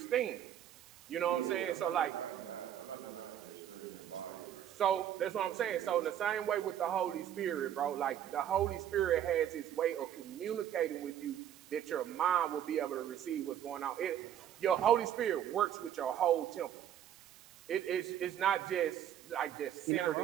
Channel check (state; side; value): quieter; left; 10.5 dB